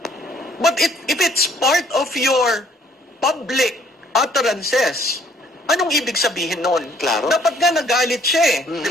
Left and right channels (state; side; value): normal; both; correlation 0.62